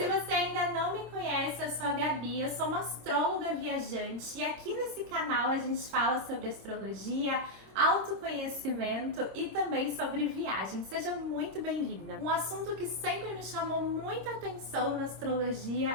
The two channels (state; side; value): late; left; 26 ms